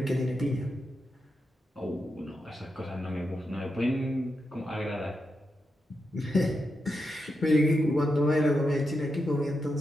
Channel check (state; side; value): normal; both; correlation 0.86